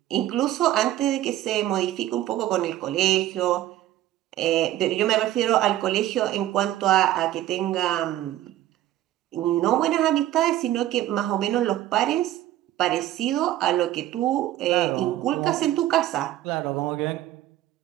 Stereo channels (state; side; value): quieter; left; 13.7 dB